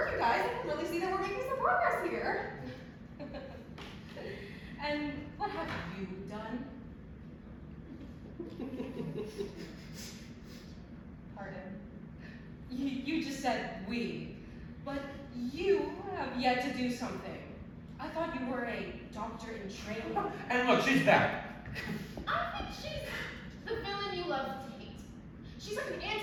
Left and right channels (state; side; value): identical; both; correlation 1.00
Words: you guys. I can really see that we're making some progress here. And what have you done? Pardon. You just said we, but you have yet to do something. I thought you were a doctor in training. And look, she's back. I think she's the villain you love to hate. She's like an